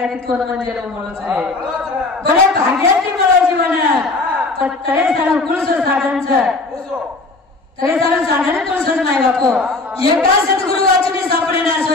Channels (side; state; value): right; quieter; 3.4 dB